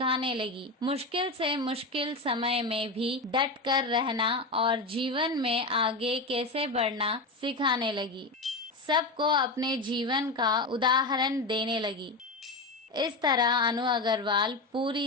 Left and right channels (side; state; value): right; quieter; 3.1 dB